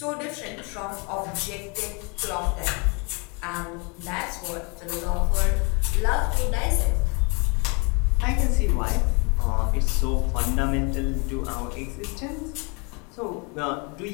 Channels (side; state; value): right; quieter; 32.0 dB